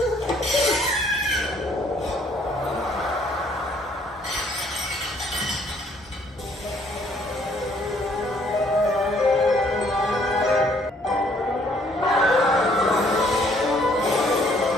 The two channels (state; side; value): normal; both; correlation 0.63